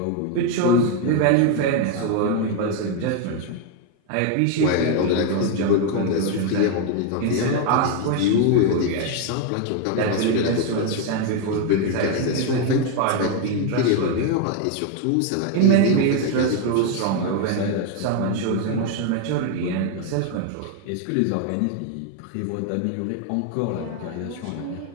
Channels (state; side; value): different; both; correlation 0.01